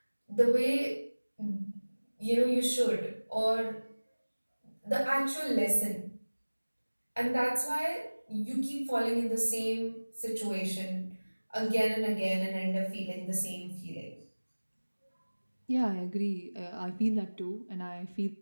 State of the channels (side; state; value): both; inverted; correlation -1.00